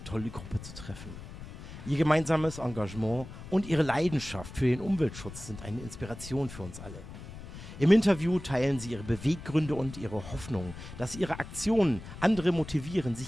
tolle Gruppe zu treffen. Ihr gemeinsames Engagement und ihre Leidenschaft für den Umweltschutz sind eine Inspiration für uns alle. Im Interview teilen sie ihre Beweggründe und ihre Hoffnung, dass ihre Aktionen andere motivieren,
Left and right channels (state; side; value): noise; left; rumble, 13 dB below the sound